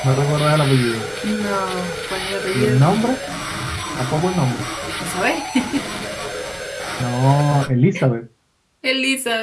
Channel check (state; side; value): identical; both; correlation 1.00